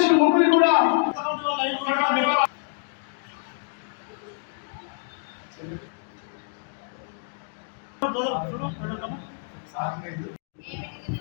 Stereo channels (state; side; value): silent; right; digital silence